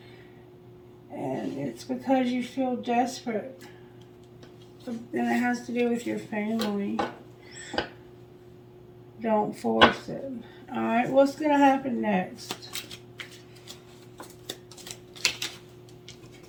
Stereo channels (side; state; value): both; identical; correlation 1.00